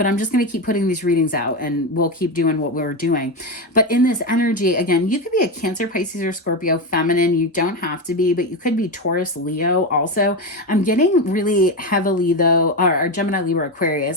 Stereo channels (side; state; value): both; normal; correlation 0.14